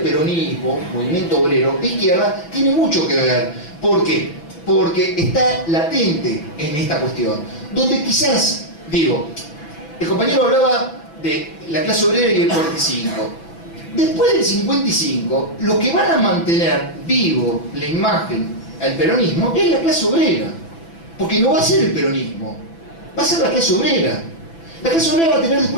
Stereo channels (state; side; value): late; right; 6.0 ms